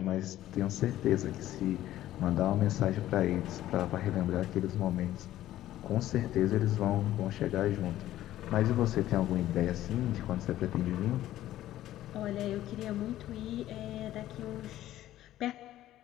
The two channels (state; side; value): quieter; right; 13.8 dB